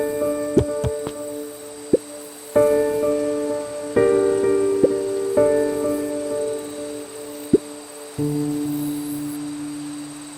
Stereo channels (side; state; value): both; identical; correlation 1.00